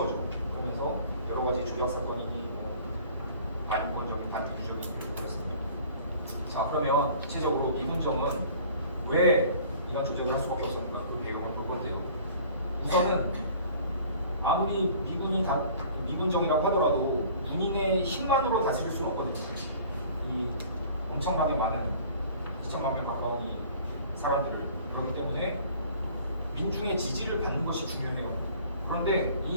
그러면서 여러 가지 조작 사건이니 뭐 반인권적인 반민주적인 일을 그랬습니다. 자 그러면 구체적으로 미군정은 왜 이런 조작을 할 수밖에 없었는가 그 배경을 볼 건데요. 우선은 아무리 미군정이라고 하더라도 군인의 힘만으로 다스릴 수는 없거든요. 이 엄청나게 많은 2천만 명 가까운 이 사람들을 그렇기 때문에 민중의 지지를 받는 것이 중요해요. 그런데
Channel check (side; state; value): both; inverted; correlation -0.49